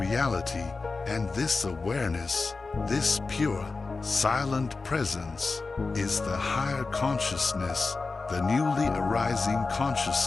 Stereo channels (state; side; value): quieter; right; 4.0 dB